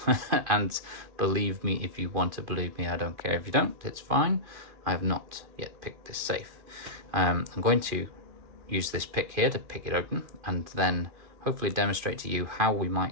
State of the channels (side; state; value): left; late; 2.4 ms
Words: And believe me if you want to believe me, I don't care if you don't, it's fine. I have not yet picked this safe. I'm going to use this pick here to pick it open, and then hopefully demonstrate to you how we